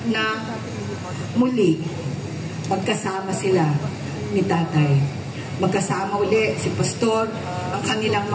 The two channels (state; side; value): identical; both; correlation 1.00